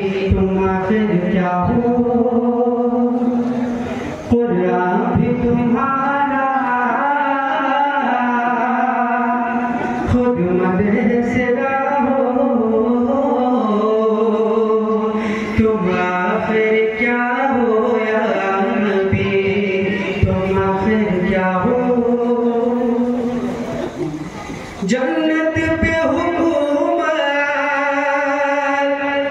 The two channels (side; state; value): both; identical; correlation 1.00